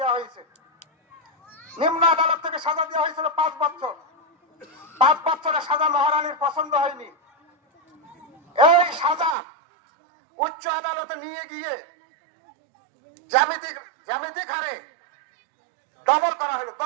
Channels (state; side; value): drops out; left; at 9.3 s